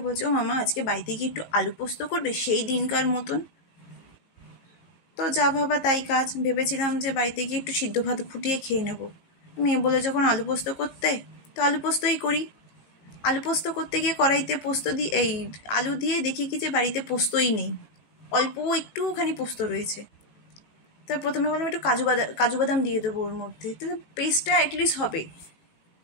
বলছে, ও মামা আজকে বাড়িতে গিয়ে একটু আলু পোস্ত করবে সেই দিনকার মতন। তো যা ভাবা তাই কাজ, ভেবেছিলাম যে বাড়িতে গিয়ে একটু সিদ্ধ ভাত ফুটিয়ে খেয়ে নেব। মেয়ে বলে যখন আলু পোস্ত করতে, তো আলু পোস্তই করি। আলু পোস্ত করতে গিয়ে কড়াইতে পোস্ত দিয়ে আলু দিয়ে দেখি কি যে বাড়িতে পোস্তই নেই, অল্প একটুখানি পোস্ত রয়েছে। তো প্রথমে বললাম একটু কাজু বাদাম দিয়ে দেবো ওর মধ্যে, তাহলে পেস্টটা অ্যাটলিস্ট হবে।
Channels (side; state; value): right; late; 18 ms